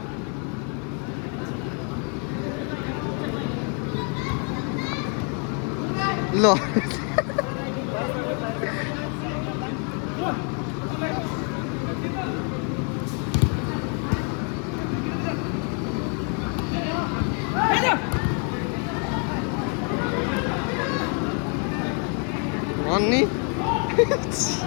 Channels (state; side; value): quieter; right; 39.2 dB